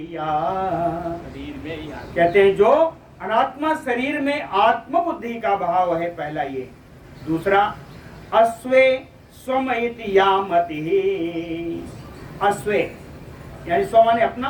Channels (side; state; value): both; identical; correlation 1.00